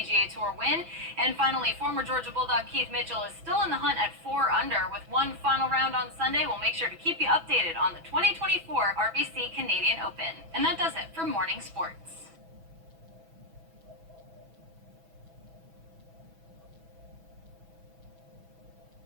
Tour win. And finally, former Georgia Bulldog Keith Mitchell is still in the hunt at 4 under. With one final round on Sunday, we'll make sure to keep you updated on the 2024 RBC Canadian Open. And that does it for Morning Sports.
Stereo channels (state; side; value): late; left; 6.1 ms